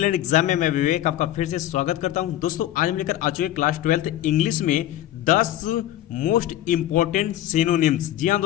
exam में मैं विवेक आपका फिर से स्वागत करता हूं। दोस्तों आज हम लेकर आ चुके क्लास 12th इंग्लिश में 10 मोस्ट इंपॉर्टेंट सिनोनिम्स। जी हाँ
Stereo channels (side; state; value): right; quieter; 13.2 dB